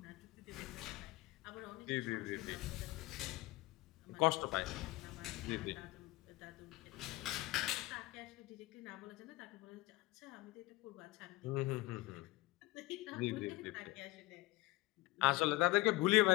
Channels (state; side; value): quieter; right; 20.4 dB